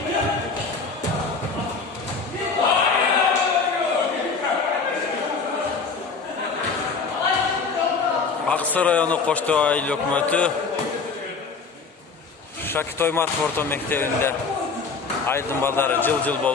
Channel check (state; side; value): quieter; right; 4.9 dB